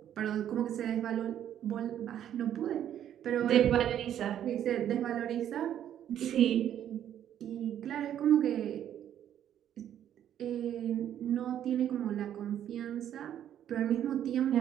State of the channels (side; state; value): left; quieter; 10.5 dB